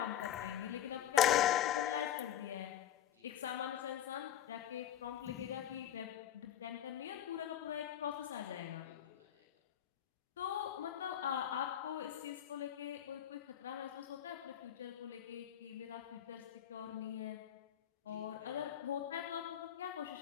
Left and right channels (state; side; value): quieter; right; 10.8 dB